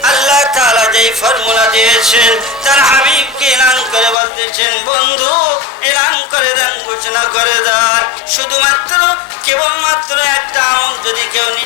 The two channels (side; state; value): right; drops out; at 4.2 s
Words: আল্লাহ তাআলা যেই ফর্মুলা দিয়েছেন, তার হাবিবকে এলান করে বলতেছেন, বন্ধু এলান করে দেন, ঘোষণা করে দেন। শুধুমাত্র কেবলমাত্র একটা আমল যদি কেউ